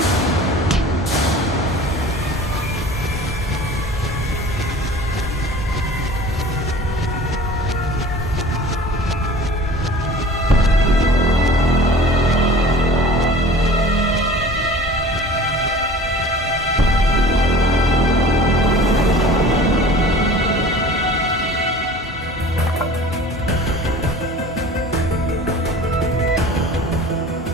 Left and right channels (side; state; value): both; normal; correlation 0.43